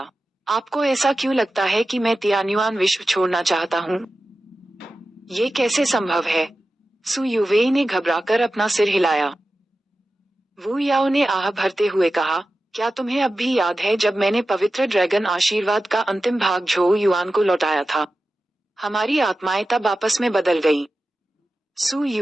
आपको ऐसा क्यों लगता है कि मैं तियान्युआन विश्व छोड़ना चाहता हूँ? ये कैसे संभव है? सू युवेई ने घबराकर अपना सिर हिलाया। वू याओ ने आह भरते हुए कहा, क्या तुम्हें अब भी याद है जब मैंने पवित्र ड्रैगन आशीर्वाद का अंतिम भाग झो युआन को लौटाया था? हमारी आत्माएं तब आपस में बदल गईं। सु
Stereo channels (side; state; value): both; normal; correlation 0.94